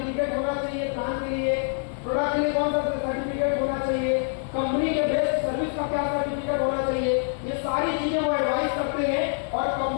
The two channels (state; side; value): silent; right; 61 dB below the other